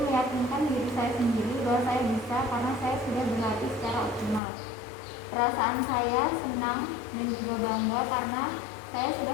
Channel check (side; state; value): right; drops out; at 4.4 s